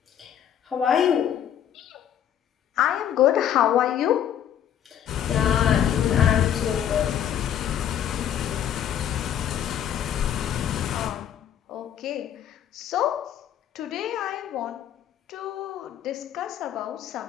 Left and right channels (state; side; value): quieter; right; 10.0 dB